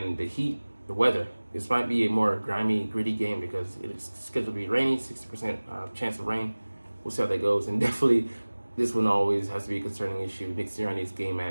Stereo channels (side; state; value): both; inverted; correlation -1.00